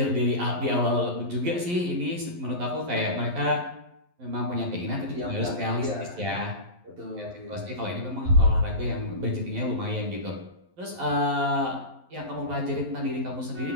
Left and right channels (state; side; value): late; left; 11 ms